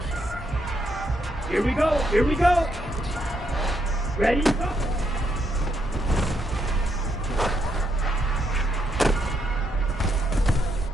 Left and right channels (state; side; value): normal; both; correlation 0.77